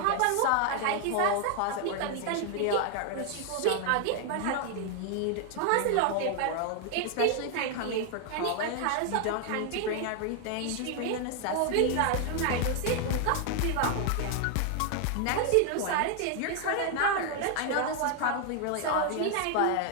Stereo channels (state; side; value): different; both; correlation 0.00